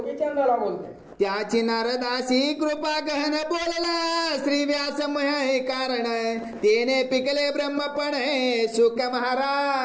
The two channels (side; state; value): both; identical; correlation 1.00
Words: बोलते. त्याची नारदासी कृपा गहन बोलला, श्री व्यासमय कारण तेने पिकले ब्रह्मपण सुख